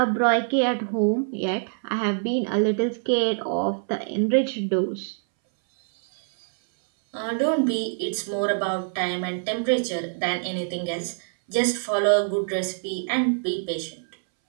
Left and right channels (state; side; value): silent; left; 62 dB below the other